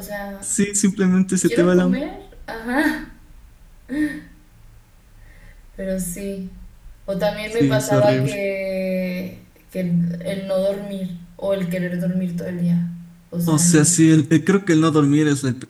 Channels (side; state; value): both; identical; correlation 1.00